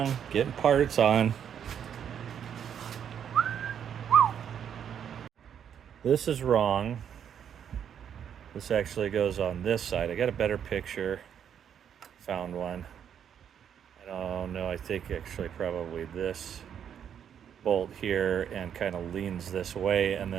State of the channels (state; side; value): quieter; left; 8.6 dB